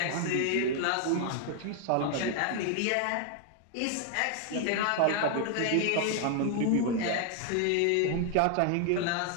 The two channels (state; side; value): different; both; correlation 0.00